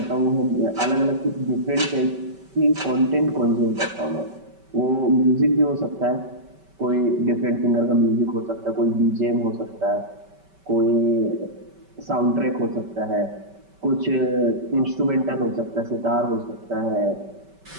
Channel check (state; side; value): late; left; 5.2 ms